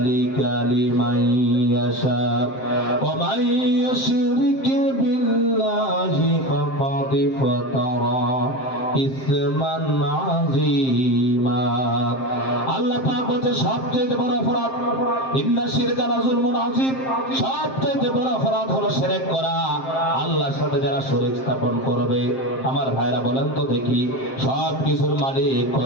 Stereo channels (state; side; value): late; right; 7.6 ms